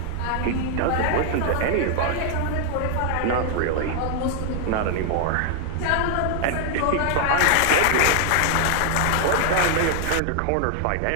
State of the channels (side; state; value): both; different; correlation 0.00